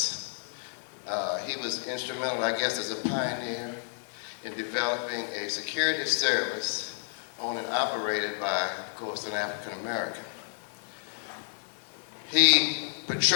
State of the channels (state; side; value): silent; right; digital silence